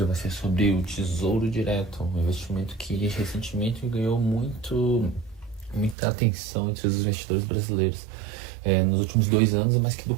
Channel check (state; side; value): drops out; left; at 6.0 s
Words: vai ser sobre o Tesouro Direto, um investimento que recentemente ganhou muita atenção entre os investidores brasileiros. Nos últimos 2 anos, mas que